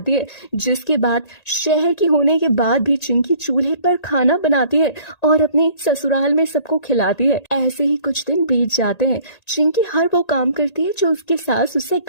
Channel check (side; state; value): right; late; 1.8 ms